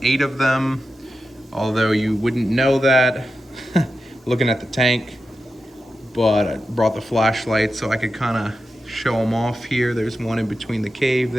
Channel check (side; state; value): both; normal; correlation 0.91